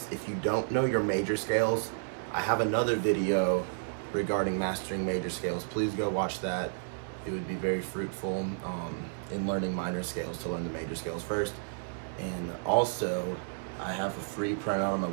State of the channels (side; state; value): left; silent; digital silence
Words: if you don't know your major scales, I have another video regarding mastering major scales. Please go watch that. It would be very fruitful in learning minor scales to learn the major scales first. And also, I have a free printout on my